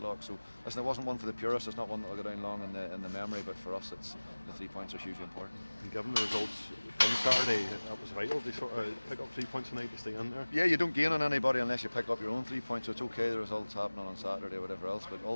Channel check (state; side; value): inverted; both; correlation -1.00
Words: So listen, it wasn't one for the purists, it's not one that will go down long in the memory, but for us the 3 points are hugely important. And given the results on Saturday, that was vital to sort of pick up 3 points tonight to stay in there. Yeah, you don't gain on anybody unless you pick up your own 3 points, so it's okay the results happening on Saturday or whatever else, but